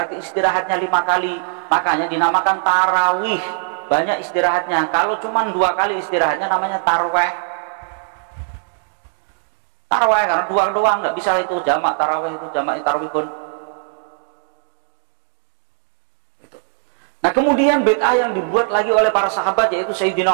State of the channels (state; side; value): silent; left; digital silence